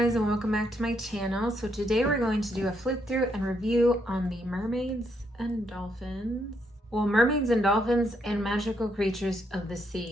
and welcome back to my channel. So today we're going to do a flip through and review on the Mermaids and Dolphins. Well, Mermaids and Dolphins and Magical Creatures of the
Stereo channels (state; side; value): normal; both; correlation 0.76